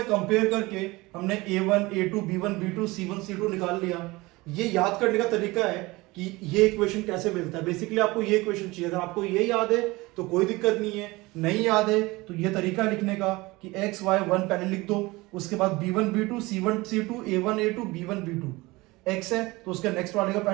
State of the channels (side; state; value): left; quieter; 21.8 dB